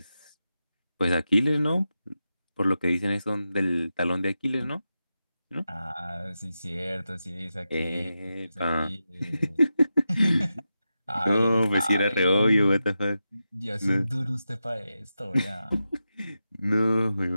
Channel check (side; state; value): both; inverted; correlation -0.90